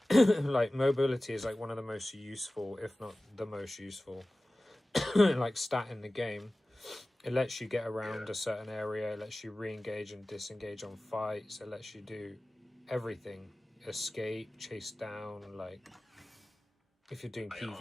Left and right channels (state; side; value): normal; both; correlation 0.97